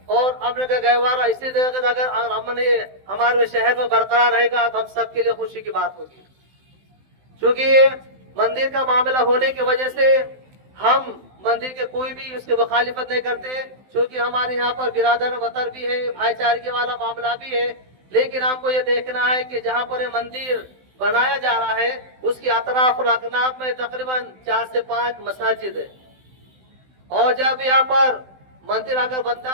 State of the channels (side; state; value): left; late; 16 ms